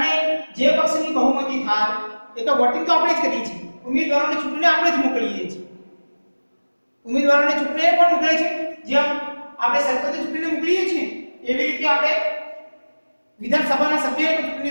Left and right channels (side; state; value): both; inverted; correlation -1.00